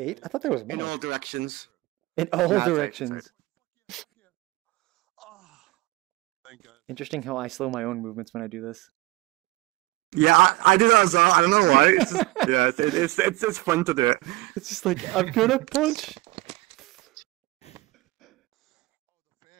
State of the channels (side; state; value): left; quieter; 20.4 dB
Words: I thought there was more. In all directions. In all Nah, it's 8, directions. Interesting how I slow my own movements when I do this. Yeah, I do that as well. I don't know why. It's just, yeah, it's fun to do it. It's just like, I'm gonna punch.